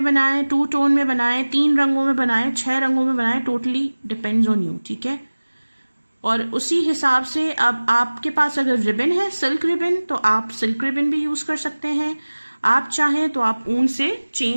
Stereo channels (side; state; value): both; inverted; correlation -1.00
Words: बनाएं, 2 टोन में बनाएं, 3 रंगों में बनाएं, 6 रंगों में बनाएं, टोटली डिपेंड्स ऑन यू। ठीक है, और उसी हिसाब से अब आपके पास अगर रिबन है, सिल्क रिबन, तो आप सिल्क रिबन भी यूज़ कर सकते हैं। आप चाहें तो आप ऊन से